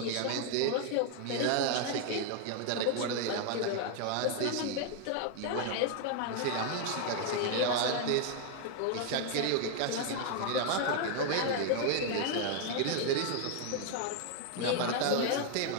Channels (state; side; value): different; both; correlation 0.00